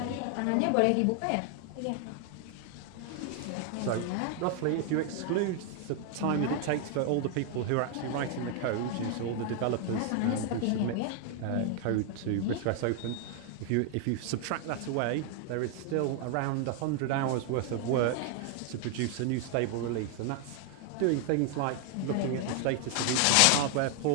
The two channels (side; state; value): both; different; correlation 0.00